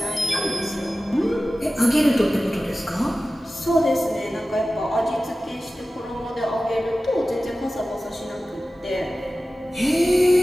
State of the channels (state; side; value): normal; both; correlation 0.95